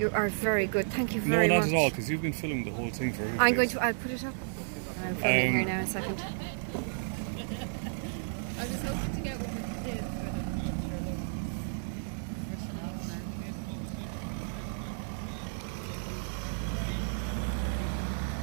are very good. Thank you No, very not much. at all, because you've been filming the whole thing for everybody. I'm going to. I'll put it up. I'm filming here now. A second. I was hoping to get what we did for the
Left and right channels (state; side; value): silent; left; digital silence